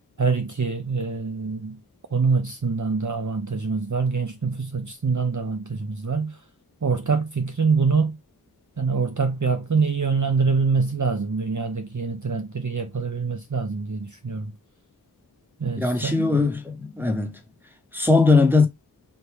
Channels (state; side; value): normal; both; correlation 0.58